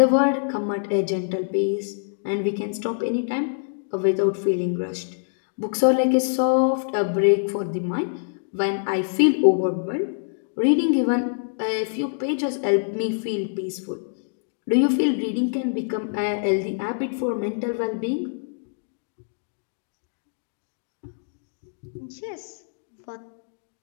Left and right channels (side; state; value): right; silent; digital silence